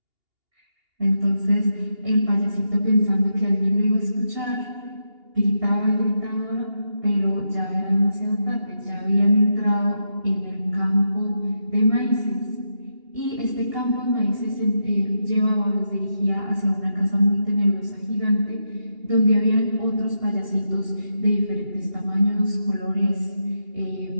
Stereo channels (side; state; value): left; late; 2.8 ms